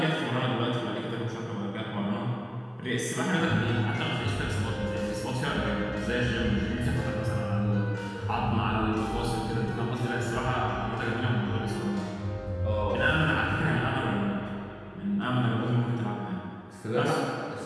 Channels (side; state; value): both; identical; correlation 1.00